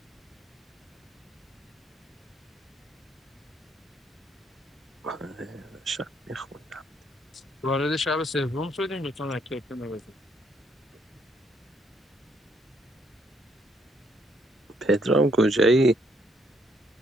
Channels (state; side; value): normal; both; correlation 0.71